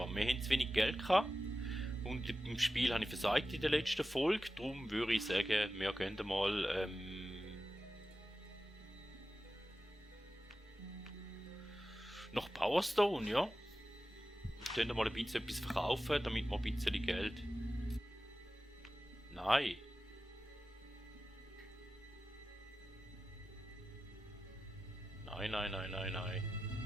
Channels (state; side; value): normal; both; correlation 0.93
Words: Wir haben zu wenig Geld gehabt. Und im Spiel habe ich versagt in der letzten Folge. Darum würde ich sagen, wir gehen mal nach Powerstone, ja. Wir können mal ein bisschen etwas verkaufen, damit wir ein bisschen Geld... Nein. Nein.